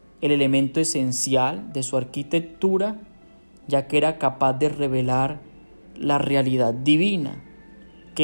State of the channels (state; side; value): inverted; both; correlation -1.00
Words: el elemento esencial de su arquitectura, ya que era capaz de revelar la realidad divina,